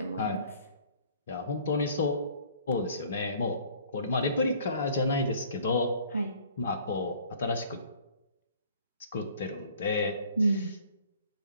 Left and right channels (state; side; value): inverted; both; correlation -0.54